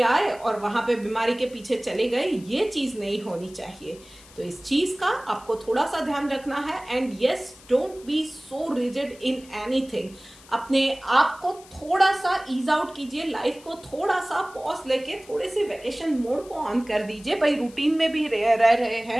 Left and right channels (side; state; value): left; noise; hiss, 23 dB below the sound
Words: आए और वहां पे बीमारी के पीछे चले गए, ये चीज नहीं होनी चाहिए। तो इस चीज का आपको थोड़ा सा ध्यान रखना है। And yes, don't be so rigid in anything. अपने आप को थोड़ा सा ईज आउट कीजिए, लाइफ को थोड़ा सा पॉज लेके थोड़े से वैकेशन मोड को ऑन कर दीजिए। भाई रूटीन में भी रह रहे